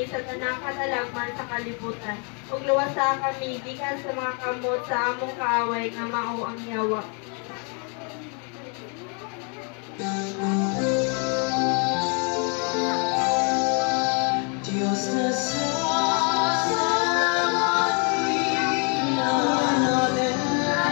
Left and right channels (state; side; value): quieter; right; 37.7 dB